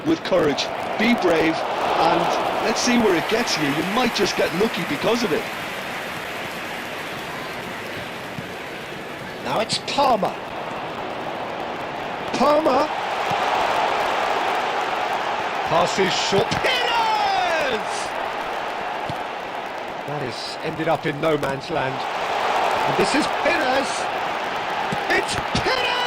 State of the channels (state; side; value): identical; both; correlation 1.00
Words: with courage. Be brave, and let's see where it gets you. You might just get lucky because of it. Now it's Palmer. Palmer. Passes short. Pires! That is ended up in no man's land. And this is Pires. It's